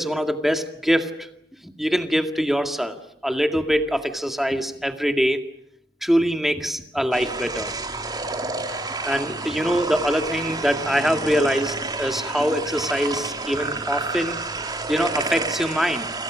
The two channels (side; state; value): both; normal; correlation 0.79